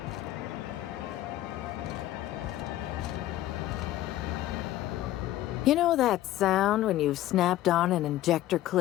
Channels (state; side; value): quieter; right; 14.4 dB